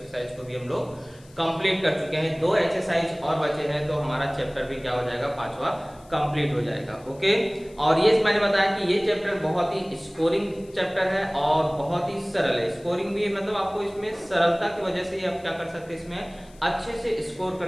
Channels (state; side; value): noise; left; hiss, 27 dB below the sound